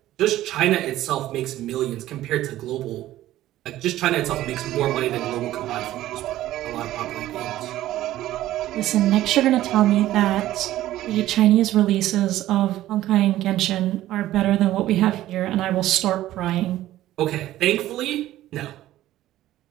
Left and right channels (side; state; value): left; quieter; 14.4 dB